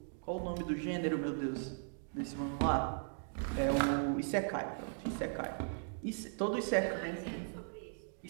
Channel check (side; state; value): left; silent; digital silence